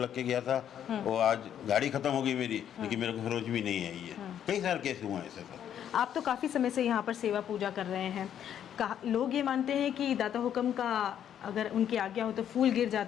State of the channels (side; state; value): right; quieter; 9.7 dB